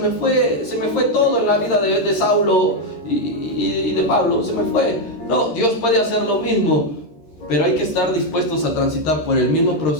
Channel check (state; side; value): late; right; 13 ms